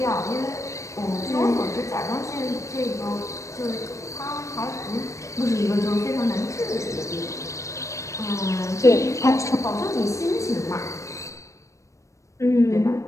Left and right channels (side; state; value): right; late; 0.15 ms